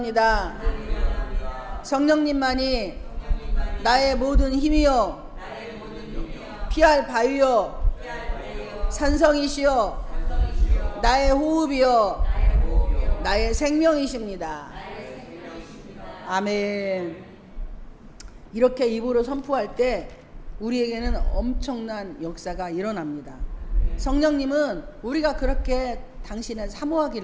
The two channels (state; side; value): identical; both; correlation 1.00